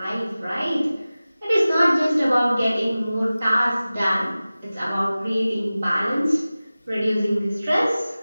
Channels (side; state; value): both; inverted; correlation -0.97